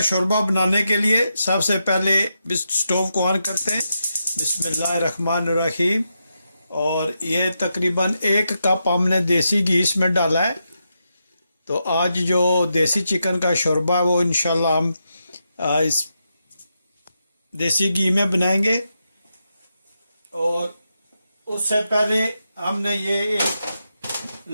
शोरबा बनाने के लिए सबसे पहले स्टोव को ऑन करते हैं। बिस्मिल्लाहिर्रहमानिर्रहीम। और ये तकरीबन 1 कप हमने देसी घी इसमें डाला है। तो आज जो देसी चिकन का शोरबा है वो इंशाल्लाह हम इस देसी घी में बनाएंगे। और उससे पहले हमने ये एक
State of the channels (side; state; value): both; inverted; correlation -0.85